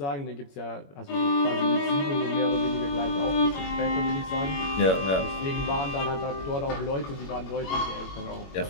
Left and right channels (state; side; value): late; right; 21 ms